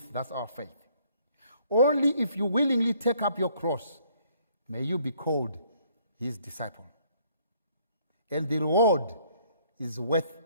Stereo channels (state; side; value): inverted; both; correlation -0.63